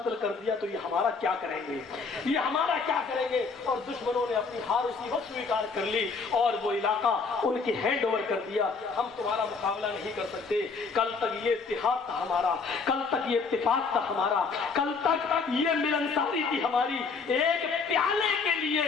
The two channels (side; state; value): right; quieter; 4.8 dB